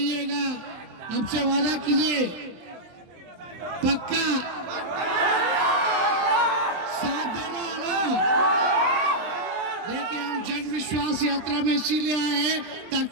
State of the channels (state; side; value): late; left; 23 ms